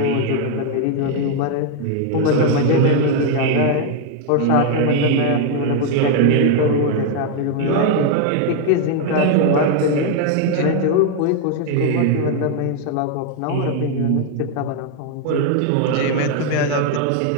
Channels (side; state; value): both; different; correlation 0.00